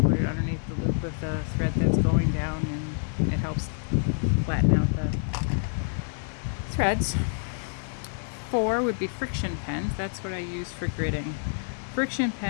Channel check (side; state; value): right; silent; digital silence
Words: put it underneath the loop of the thread that's going down, and it helps flatten out the threads. 4 would be friction pens. That's what I use for gridding. Friction